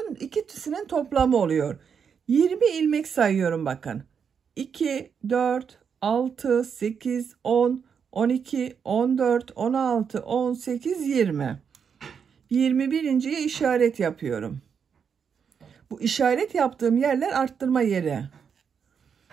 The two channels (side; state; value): left; quieter; 6.8 dB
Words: ikisinin toplamı oluyor. 20 ilmek sayıyorum bakın. 2, 4, 6, 8, 10, 12, 14, 16, 18, 20. 21.'ye işaret yapıyorum. Bu işaret yaptığım yerler arttırma yeri.